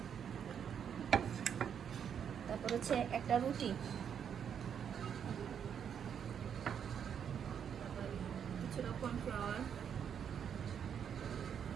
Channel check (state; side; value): quieter; left; 8.1 dB